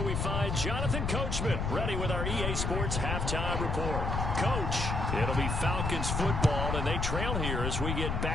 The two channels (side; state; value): left; noise; rumble, 1 dB below the sound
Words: we find Jonathan Coachman, ready with our EA Sports halftime report. Coach, it'll be Falcons football, and they trail here as we get